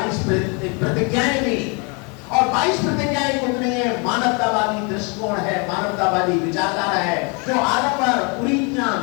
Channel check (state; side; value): quieter; right; 32.8 dB